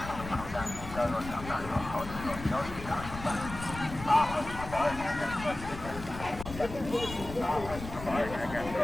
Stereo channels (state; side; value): noise; left; rumble, 11 dB below the sound